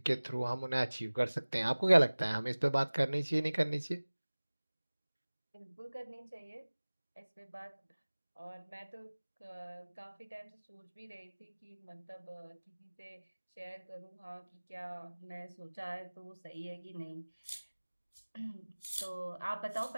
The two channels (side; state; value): both; inverted; correlation -1.00